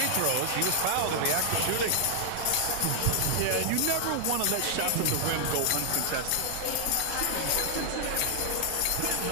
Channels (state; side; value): different; both; correlation 0.00